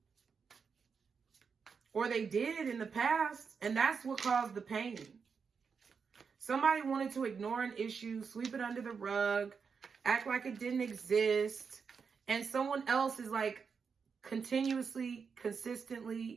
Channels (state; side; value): quieter; left; 5.8 dB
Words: Or they did in the past. And that's what caused the pain. Somebody wanted to ignore an issue, sweep it under the rug, act like it didn't exist. And someone else is like, continuously,